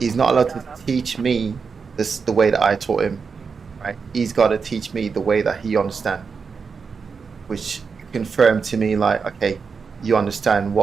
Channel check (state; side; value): quieter; left; 5.4 dB